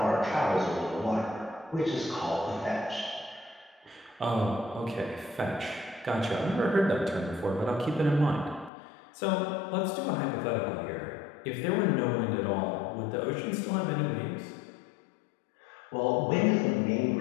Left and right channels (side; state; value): right; drops out; at 8.7 s